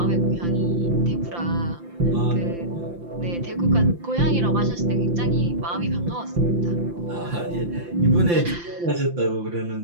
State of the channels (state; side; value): late; left; 5.8 ms